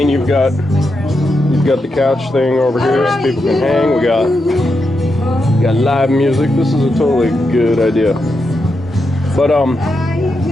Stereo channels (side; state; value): both; normal; correlation 0.85